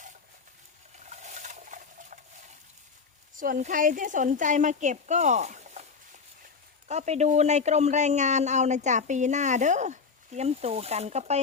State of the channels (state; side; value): quieter; right; 5.2 dB